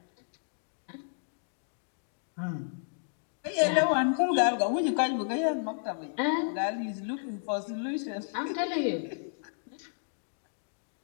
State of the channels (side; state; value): right; silent; digital silence